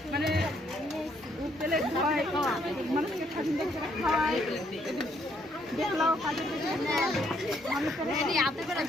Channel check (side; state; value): both; normal; correlation 0.70